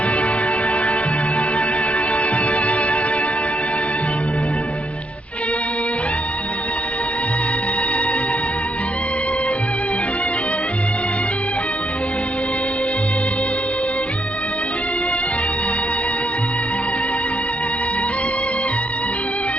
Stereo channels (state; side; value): late; right; 0.063 ms